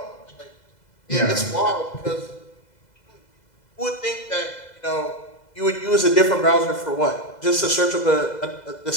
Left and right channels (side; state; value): right; late; 2.0 ms